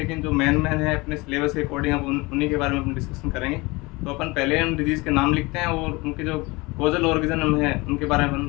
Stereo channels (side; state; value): right; quieter; 23.8 dB